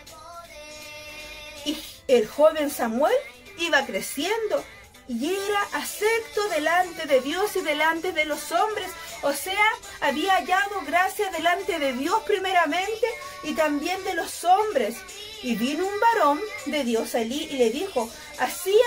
Y el joven Samuel iba creciendo y era acepto delante de Dios y delante de los hombres. O sea, había hallado gracia delante de Dios primeramente y también de los hombres. Y vino un varón de Dios a Elí y le dijo: así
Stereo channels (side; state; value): both; identical; correlation 1.00